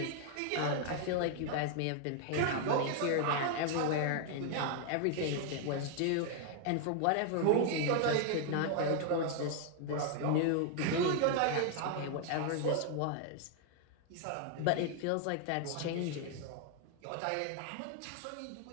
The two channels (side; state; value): both; different; correlation 0.00